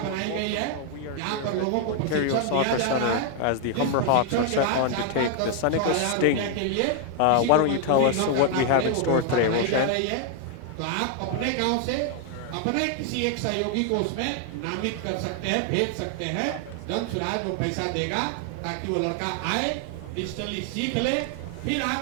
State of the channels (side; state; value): both; different; correlation 0.00